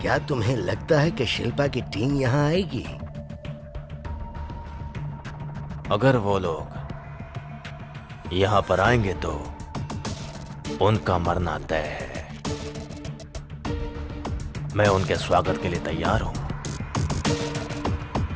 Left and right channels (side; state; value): both; identical; correlation 1.00